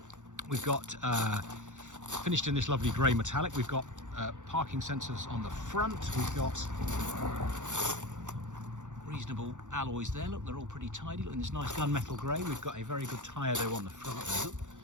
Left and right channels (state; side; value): late; left; 0.85 ms